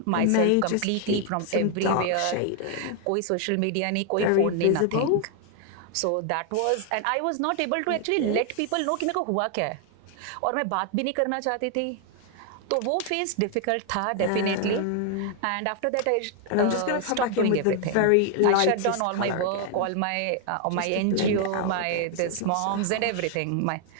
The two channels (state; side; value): different; both; correlation 0.00